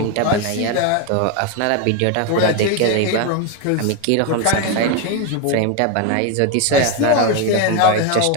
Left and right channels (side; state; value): both; different; correlation 0.02